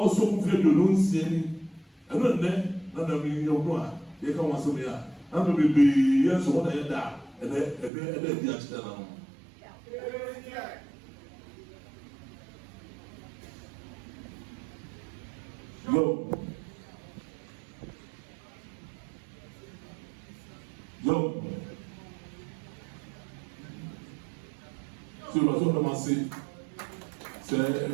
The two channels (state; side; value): drops out; left; at 7.9 s